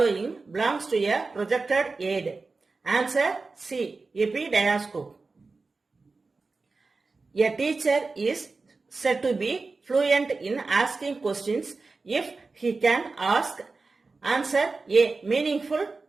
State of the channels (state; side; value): quieter; left; 3.9 dB